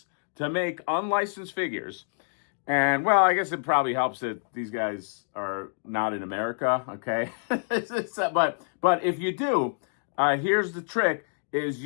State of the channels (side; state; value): right; silent; digital silence